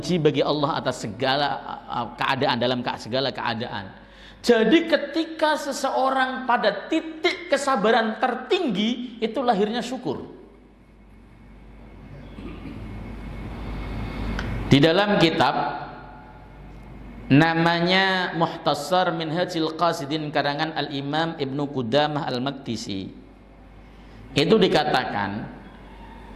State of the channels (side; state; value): both; identical; correlation 1.00